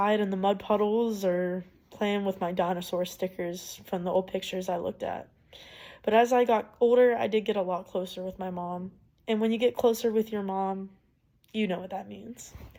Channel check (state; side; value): identical; both; correlation 1.00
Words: in the mud puddles or playing with my dinosaur stickers from the old pictures I looked at. But as I got older, I did get a lot closer with my mom. And when you get closer with your mom, you know what that means.